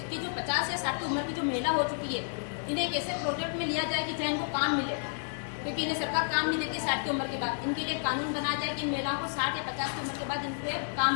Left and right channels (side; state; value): right; silent; digital silence